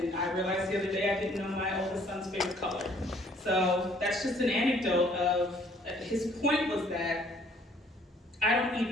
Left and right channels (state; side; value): normal; both; correlation 0.61